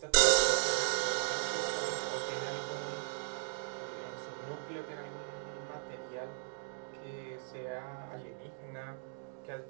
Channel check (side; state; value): left; silent; digital silence